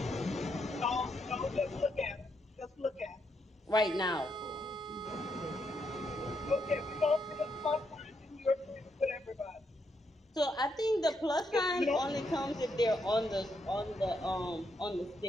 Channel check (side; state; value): both; normal; correlation 0.78